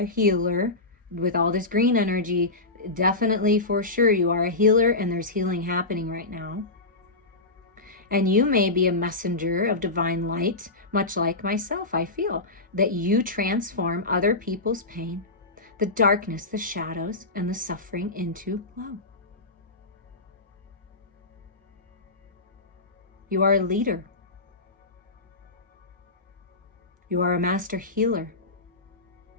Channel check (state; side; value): quieter; right; 3.1 dB